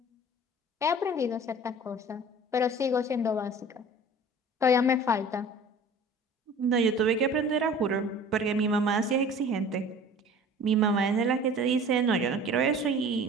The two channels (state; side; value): normal; both; correlation 0.44